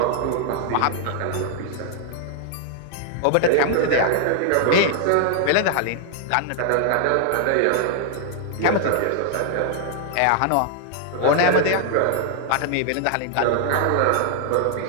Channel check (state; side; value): different; both; correlation 0.00